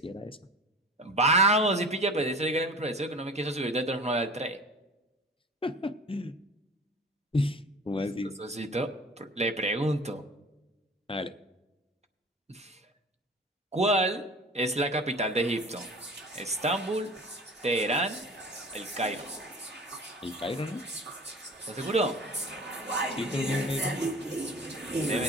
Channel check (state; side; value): normal; both; correlation 0.40